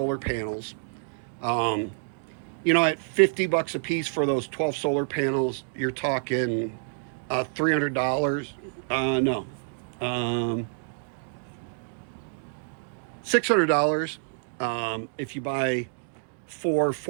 panels. At 50 bucks a piece for those 12 solar panels, you're talking $300. No. $600 if you buy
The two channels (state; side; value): silent; left; digital silence